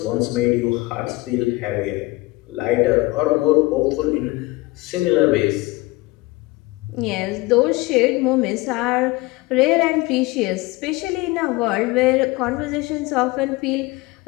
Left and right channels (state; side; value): quieter; right; 21.6 dB